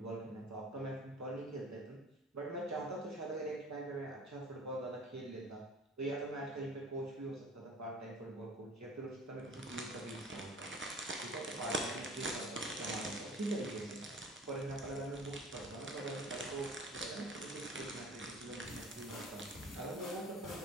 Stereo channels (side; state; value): both; normal; correlation 0.44